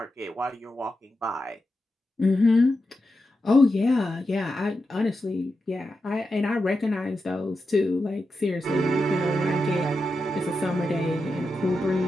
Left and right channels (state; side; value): normal; both; correlation 0.89